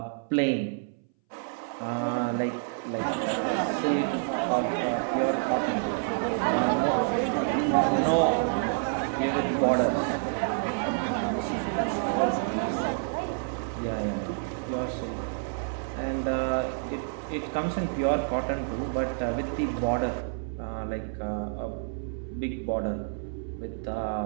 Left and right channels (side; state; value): left; silent; 59 dB below the other